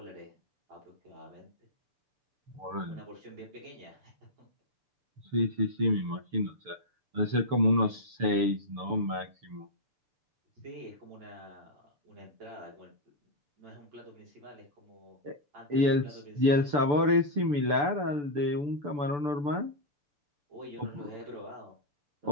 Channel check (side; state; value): left; late; 6.9 ms